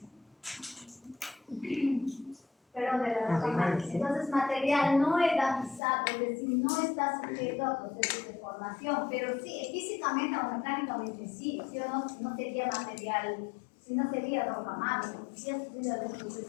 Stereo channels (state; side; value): drops out; right; at 5.8 s